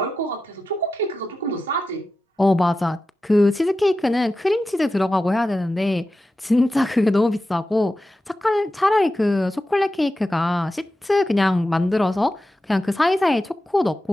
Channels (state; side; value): normal; both; correlation 0.92